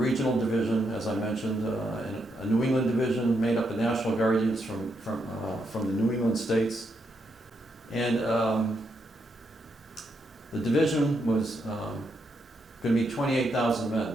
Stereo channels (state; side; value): normal; both; correlation 0.80